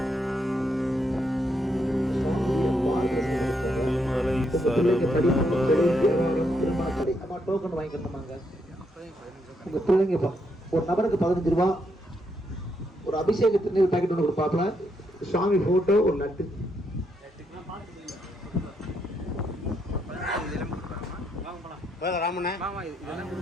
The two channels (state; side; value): normal; both; correlation 0.77